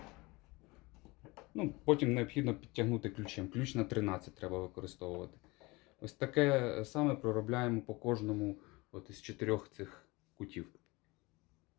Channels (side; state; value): right; quieter; 23.7 dB